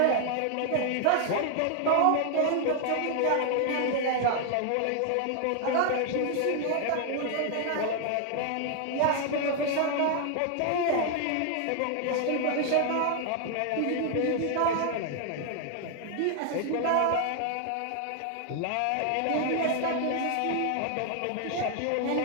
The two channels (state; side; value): different; both; correlation 0.00